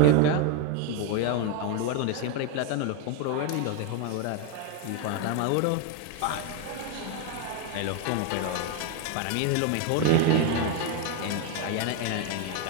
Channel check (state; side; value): different; both; correlation 0.01